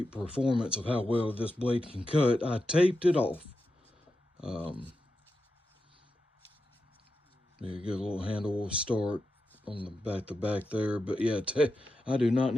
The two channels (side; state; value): both; normal; correlation 0.89